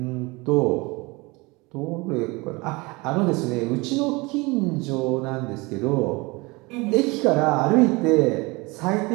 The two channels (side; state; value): left; quieter; 25.0 dB